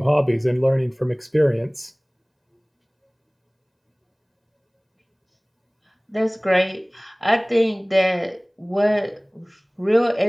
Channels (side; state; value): both; identical; correlation 1.00